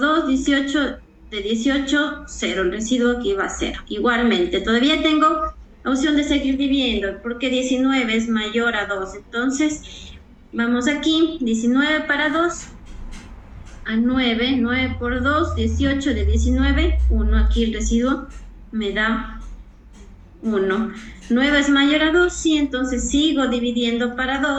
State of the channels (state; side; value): identical; both; correlation 1.00